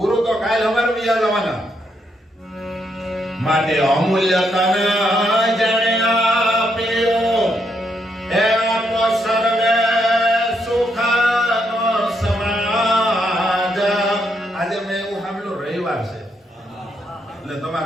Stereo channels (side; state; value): both; normal; correlation 0.77